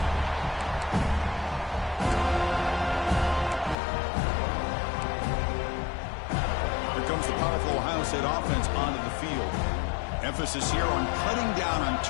comes the powerful Ohio State offense onto the field. Emphasis here on cutting down on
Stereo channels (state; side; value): drops out; right; at 3.8 s